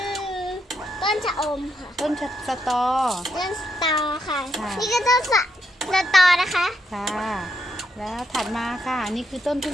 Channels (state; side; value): normal; both; correlation 0.79